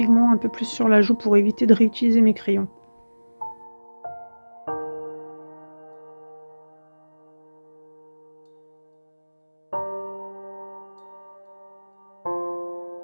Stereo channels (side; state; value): both; inverted; correlation -1.00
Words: un peu plus sur la joue pour éviter de réutiliser mes crayons.